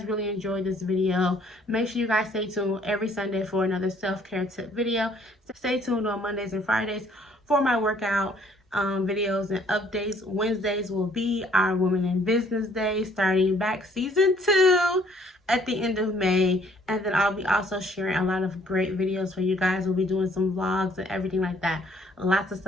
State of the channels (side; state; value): both; normal; correlation 0.61